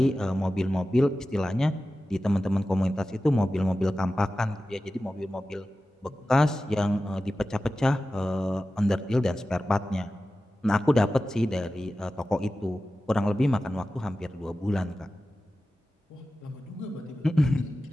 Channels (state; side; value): normal; both; correlation 0.94